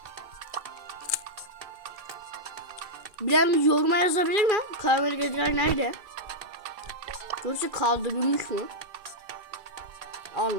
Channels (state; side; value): late; left; 2.4 ms